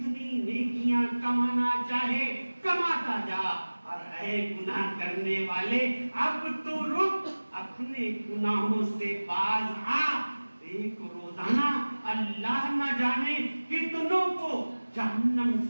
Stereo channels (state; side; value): inverted; both; correlation -1.00